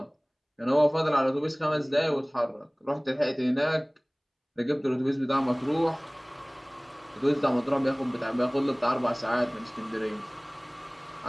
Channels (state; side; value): identical; both; correlation 1.00